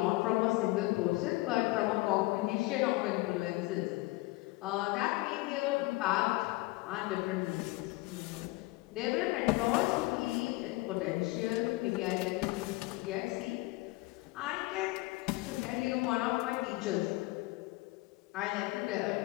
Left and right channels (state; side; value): quieter; right; 21.2 dB